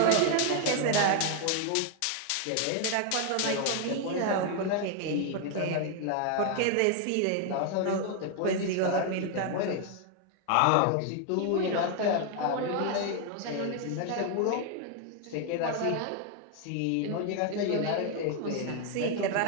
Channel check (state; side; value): different; both; correlation 0.00